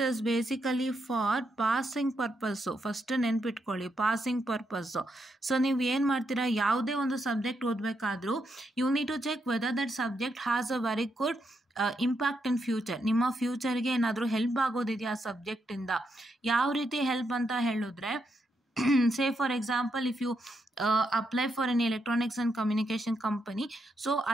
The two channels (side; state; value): both; normal; correlation 0.81